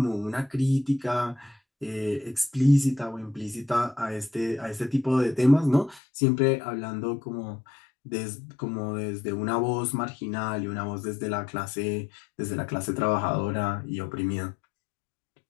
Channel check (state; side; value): drops out; right; at 6.0 s